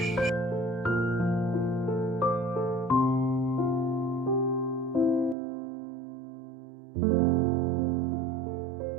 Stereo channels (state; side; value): drops out; left; at 5.4 s